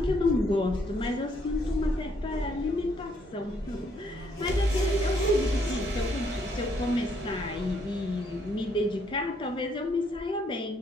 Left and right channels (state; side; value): normal; both; correlation 0.70